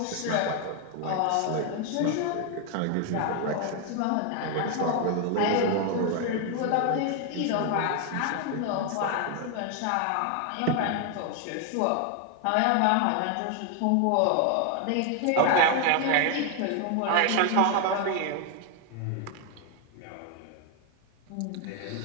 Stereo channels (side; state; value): both; different; correlation 0.01